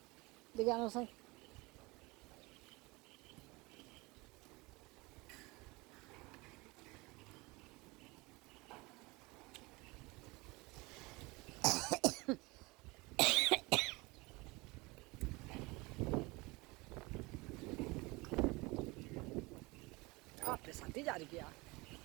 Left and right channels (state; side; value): quieter; left; 24.2 dB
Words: দেখে আনো সাই। আপনি সাথে যা গিয়া